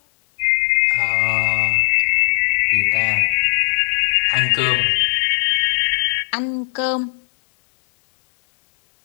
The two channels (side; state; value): right; silent; digital silence